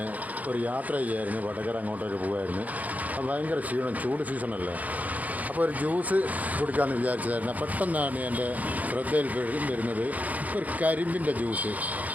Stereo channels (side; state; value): left; late; 0.077 ms